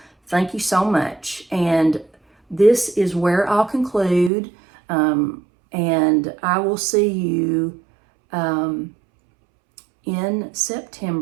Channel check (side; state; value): left; drops out; at 4.3 s